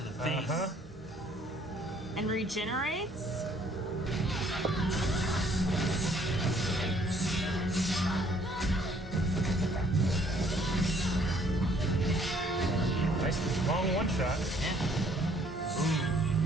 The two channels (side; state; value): both; normal; correlation 0.62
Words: to the face. Uh-huh. And regenerates? Nice long one shot. Yeah.